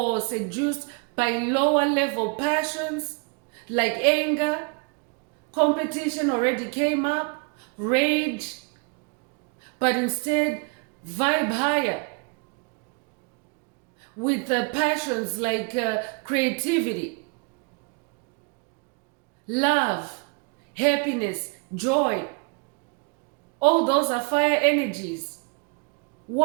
seduced by lower level passions like anger, competition already came up, rage, but instead vibe higher with passions like creativity, love, happiness, joy. All those are fire energies,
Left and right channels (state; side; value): quieter; left; 32.4 dB